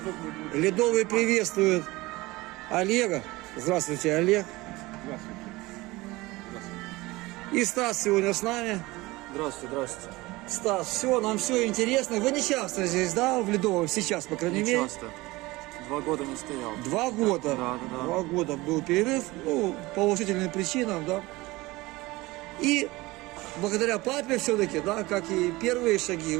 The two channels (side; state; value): left; quieter; 20.8 dB